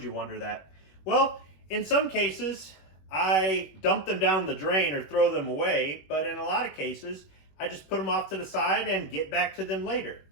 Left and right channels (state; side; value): late; right; 21 ms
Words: you wonder that? Well, in some cases, I dump them down the drain or throw them away, but in a lot of cases, I just put them off to the side and get back to them later.